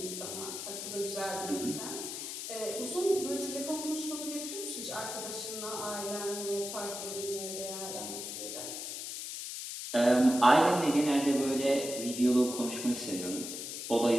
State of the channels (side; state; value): left; noise; hiss, 6 dB below the sound